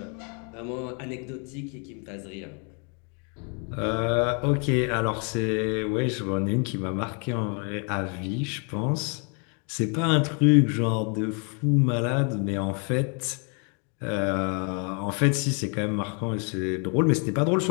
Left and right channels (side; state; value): right; quieter; 37.5 dB